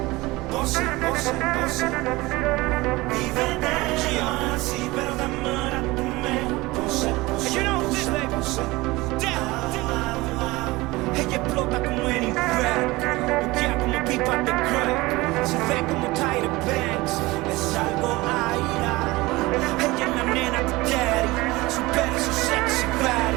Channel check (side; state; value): left; quieter; 21.0 dB